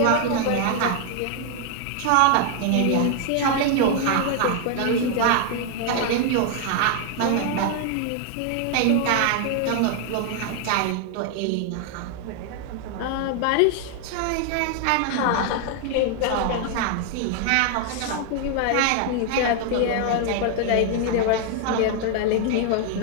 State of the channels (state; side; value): different; both; correlation 0.00